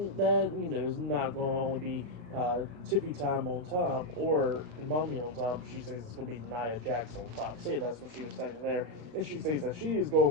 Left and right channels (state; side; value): late; left; 35 ms